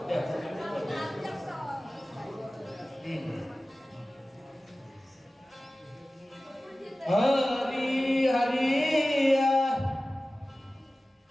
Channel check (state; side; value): normal; both; correlation 0.97